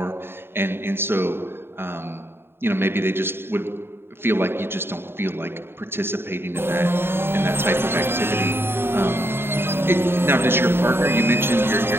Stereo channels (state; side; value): late; left; 0.11 ms